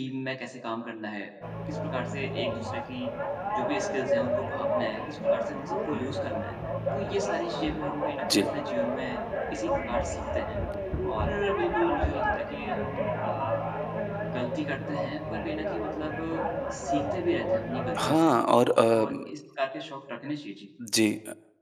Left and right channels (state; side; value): identical; both; correlation 1.00